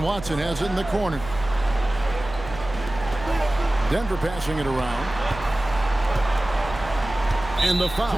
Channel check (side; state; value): right; noise; hum, 13 dB below the sound